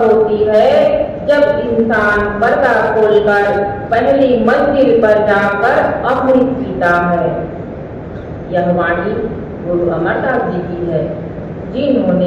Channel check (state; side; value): identical; both; correlation 1.00